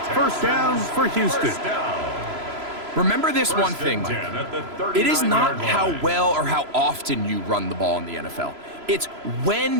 1st down for Houston. Remember this one thing, Mike. It is not how well or how often you run the ball in the NFL. It's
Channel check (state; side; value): late; left; 3.0 ms